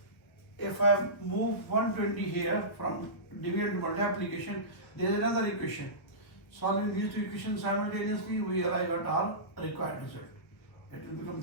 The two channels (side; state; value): right; late; 1.1 ms